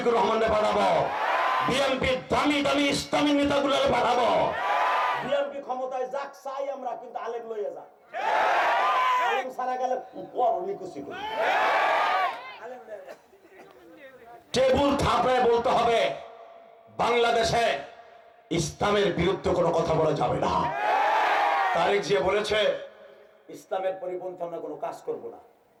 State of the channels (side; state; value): both; identical; correlation 1.00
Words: রহমানরে পাঠাবো, বিএনপি দামি দামি ইসলামী নেতাগুলোরে পাঠাবো। বিএনপি ক্ষমতায় যাক চাই আমরা, কিন্তু আলেম লইয়া যাক। আলেম সারা গেলে পর নিকুচি করি। টেবুল থাপড়ায় বলতে হবে, বাংলাদেশে ইসলামের বিরুদ্ধে কোনো কথা বলা যাবে না। তারেক জিয়া বলেছে ইসলামের পরিপন্থী আমরা কোনো কাজ করব না।